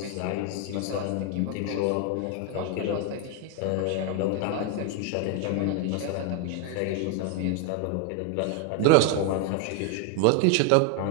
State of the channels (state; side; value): different; both; correlation 0.00